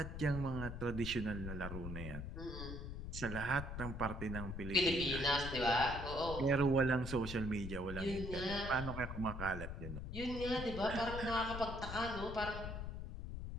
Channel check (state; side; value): noise; left; rumble, 6 dB below the sound